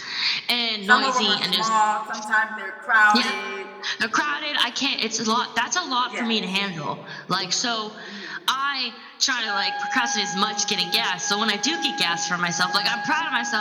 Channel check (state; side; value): identical; both; correlation 1.00